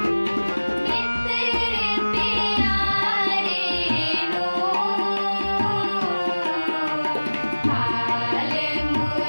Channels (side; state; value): both; inverted; correlation -1.00